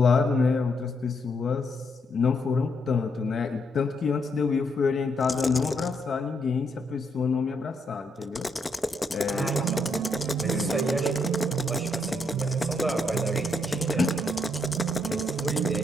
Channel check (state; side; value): normal; both; correlation 0.76